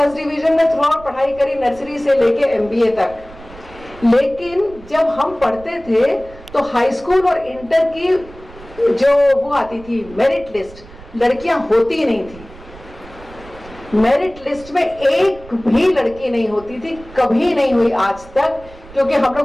डिवीजन में थ्रू आउट पढ़ाई करी, नर्सरी से लेके MBA तक। लेकिन जब हम पढ़ते थे तो हाई स्कूल और इंटर की जो वो आती थी मेरिट लिस्ट, लड़कियां होती नहीं थी। मेरिट लिस्ट में एक भी लड़की नहीं होती थी, कभी नहीं हुई आज तक, क्योंकि हम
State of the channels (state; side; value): noise; right; rumble, 20 dB below the sound